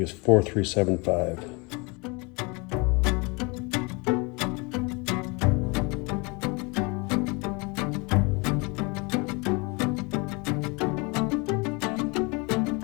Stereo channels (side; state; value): right; quieter; 28.9 dB